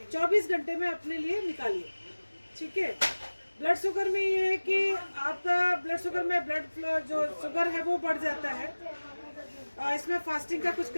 24 घंटे में अपने लिए निकालिए, ठीक है। ब्लड शुगर में ये है कि आपका ब्लड शुगर में ब्लड फ्लो जो शुगर है वो बढ़ जाता है। इसमें फास्टिंग का कुछ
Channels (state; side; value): inverted; both; correlation -1.00